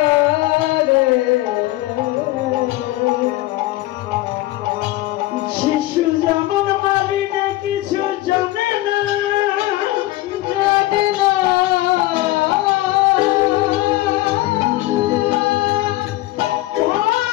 শিশু যেমন মারিনে কিছু জানে না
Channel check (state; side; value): quieter; right; 17.2 dB